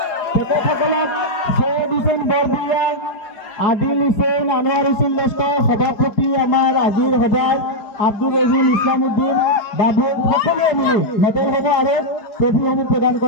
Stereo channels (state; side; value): late; right; 4.9 ms